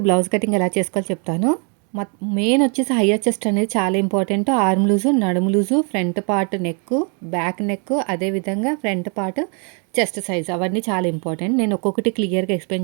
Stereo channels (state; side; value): quieter; left; 38.2 dB